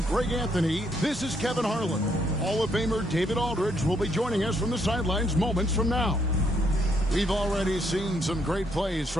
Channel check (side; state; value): both; normal; correlation 0.72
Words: Greg Anthony, this is Kevin Harlan. Hall of Famer David Aldridge will be joining us from the sidelines moments from now. We've already seen some great plays